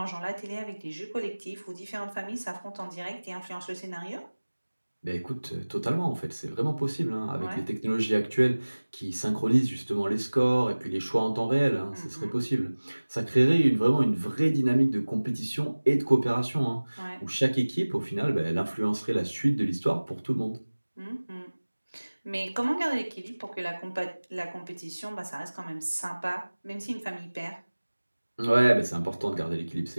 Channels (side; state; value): both; inverted; correlation -1.00